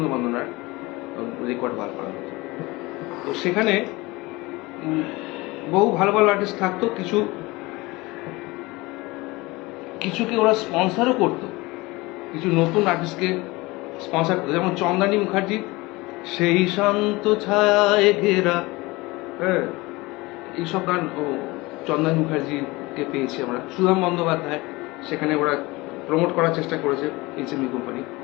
বন্দনার রেকর্ড বার করা হতো। তো সেখানে বহু ভালো ভালো আর্টিস্ট থাকতো, কিছুকে ওরা স্পন্সরও করতো, কিছু নতুন আর্টিস্টকে স্পন্সর করতো, যেমন চন্দানী মুখার্জি সেই শান্ত ছায় ঘেরা, হ্যাঁ এইসব গান ও চন্দানী মুখার্জিকে পেয়েছি আমরা। সুধাম বন্দ্যোপাধ্যায় সেখানে ওরা প্রমোট করার চেষ্টা করেছে এইচএমভি কোম্পানি।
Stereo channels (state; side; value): quieter; right; 22.4 dB